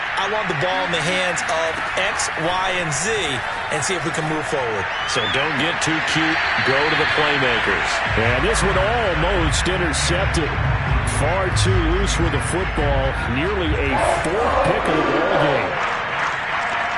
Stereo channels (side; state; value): both; identical; correlation 1.00